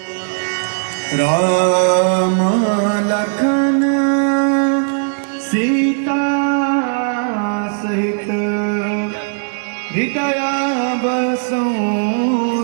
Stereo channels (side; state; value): left; silent; digital silence